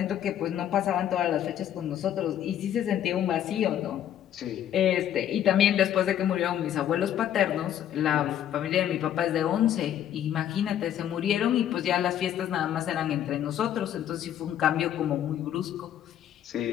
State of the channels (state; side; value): quieter; right; 10.6 dB